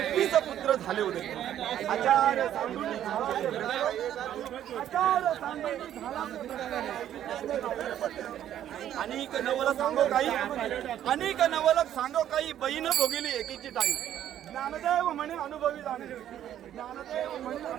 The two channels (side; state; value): left; quieter; 11.0 dB